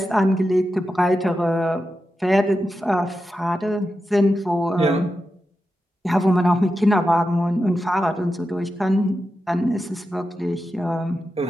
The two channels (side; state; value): both; normal; correlation 0.90